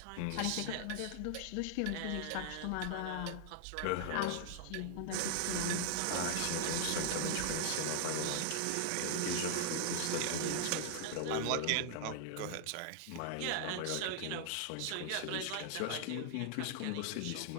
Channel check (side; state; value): both; different; correlation -0.01